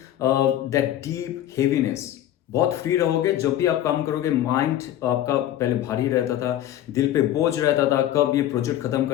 that deep heaviness, बहुत फ्री रहोगे। जब भी आप काम करोगे, माइंड आपका पहले भारी रहता था, दिल पे बोझ रहता था, कब ये प्रोजेक्ट खत्म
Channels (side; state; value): right; quieter; 12.4 dB